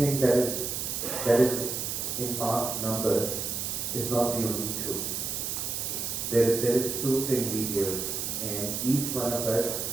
that is in mass numbers is not the only truth. There is truth in details, and each one of us,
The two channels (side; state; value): right; noise; hiss, 3 dB below the sound